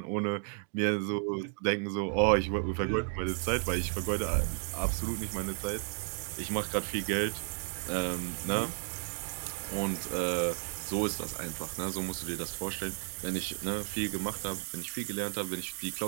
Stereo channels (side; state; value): left; silent; 56 dB below the other